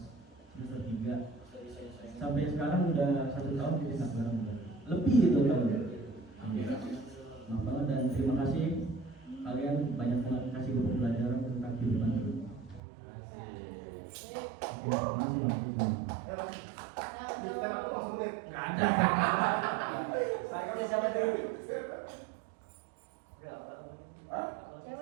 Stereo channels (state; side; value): drops out; left; at 12.8 s